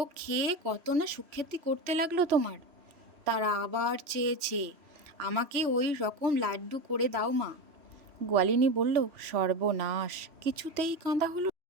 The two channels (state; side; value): late; left; 3.0 ms